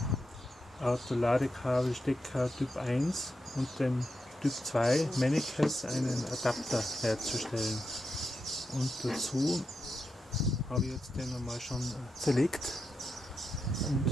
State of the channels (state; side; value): normal; both; correlation 0.86